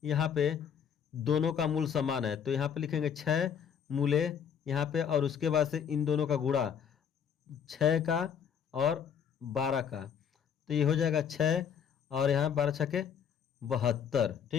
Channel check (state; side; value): quieter; right; 7.8 dB